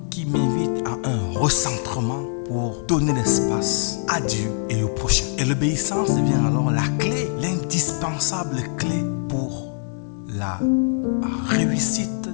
qui m'invite à un recentrement pour donner l'espace à Dieu et au prochain. Et l'obéissance devient alors la clé, l'indispensable clé pour la réussite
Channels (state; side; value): silent; right; 61 dB below the other